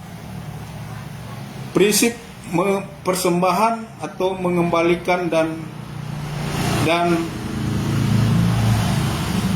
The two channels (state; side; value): identical; both; correlation 1.00